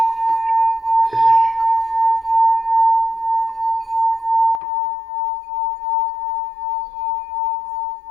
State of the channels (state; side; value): drops out; right; at 4.6 s